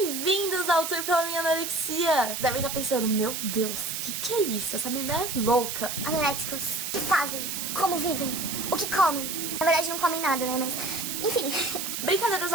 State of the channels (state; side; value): noise; right; hiss, 4 dB below the sound